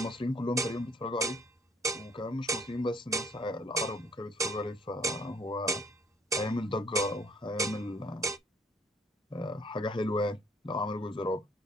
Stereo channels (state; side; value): normal; both; correlation 0.61